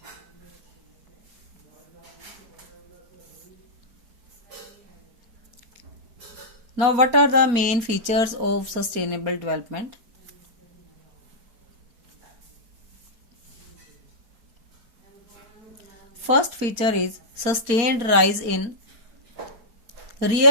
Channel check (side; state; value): left; late; 4.3 ms